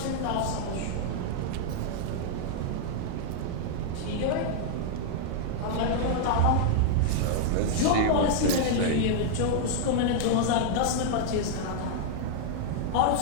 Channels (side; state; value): both; different; correlation -0.01